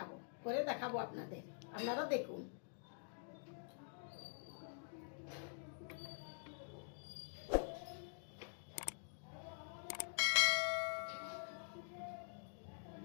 দেখাবো আপনাদের। আপনারা দেখুন।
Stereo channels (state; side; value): silent; right; digital silence